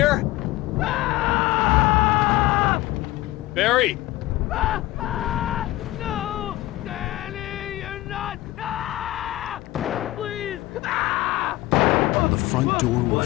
Barry! No! Danny, you're not! Please! The front door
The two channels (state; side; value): quieter; right; 17.5 dB